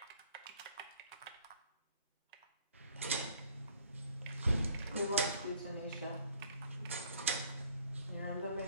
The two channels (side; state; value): both; inverted; correlation -0.59